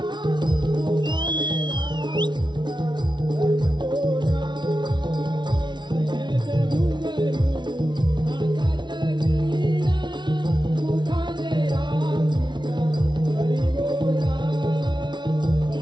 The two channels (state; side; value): late; left; 0.21 ms